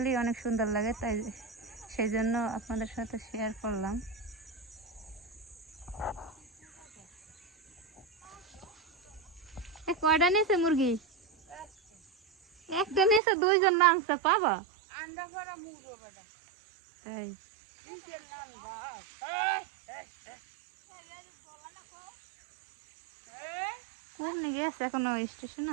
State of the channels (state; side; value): drops out; left; at 13.2 s